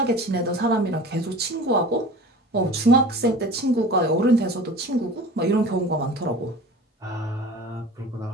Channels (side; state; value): both; normal; correlation 0.39